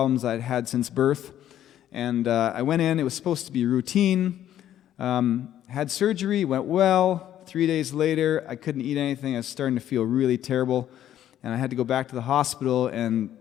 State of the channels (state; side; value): quieter; right; 11.5 dB